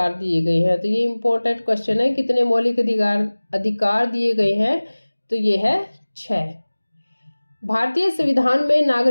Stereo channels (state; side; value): inverted; both; correlation -1.00